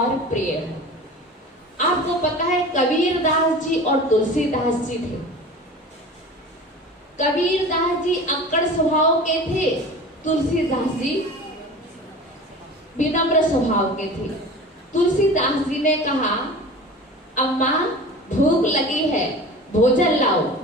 प्रिय हो। आपको पता है कबीरदास जी और तुलसीदास जी थे। कबीरदास जी अक्कड़ स्वभाव के थे, तुलसीदास जी विनम्र स्वभाव के थे। तुलसीदास जी ने कहा अम्मा भूख लगी है, भोजन लाओ।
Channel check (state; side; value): normal; both; correlation 0.37